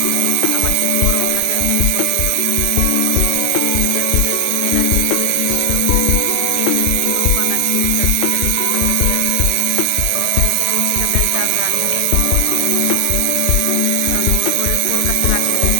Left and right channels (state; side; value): different; both; correlation 0.00